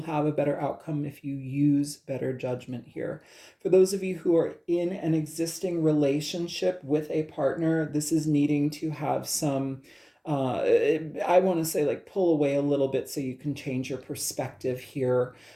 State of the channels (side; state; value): both; identical; correlation 1.00